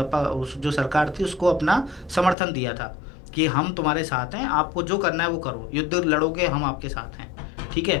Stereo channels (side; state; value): right; drops out; at 2.4 s